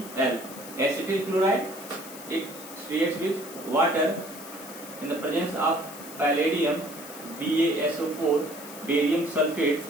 acetyl chloride, it reacts with water in the presence of palladium BaSO4 barium sulfates.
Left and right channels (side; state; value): left; noise; hiss, 14 dB below the sound